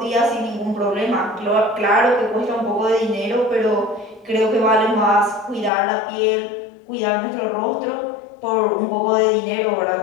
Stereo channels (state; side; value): drops out; right; at 5.7 s